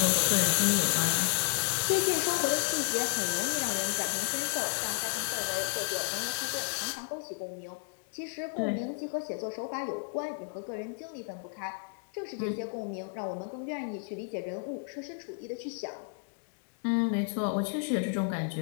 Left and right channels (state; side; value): silent; right; 56 dB below the other